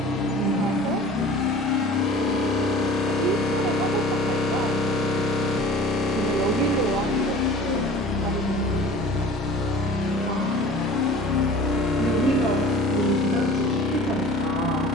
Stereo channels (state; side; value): normal; both; correlation 0.44